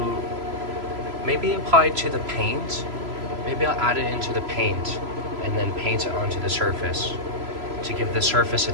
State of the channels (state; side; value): late; left; 3.0 ms